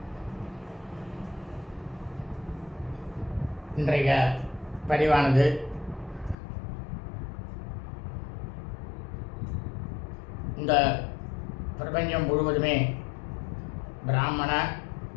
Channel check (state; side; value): drops out; right; at 6.4 s